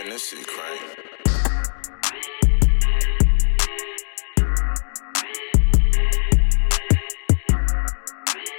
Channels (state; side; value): silent; right; digital silence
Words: this shit crank.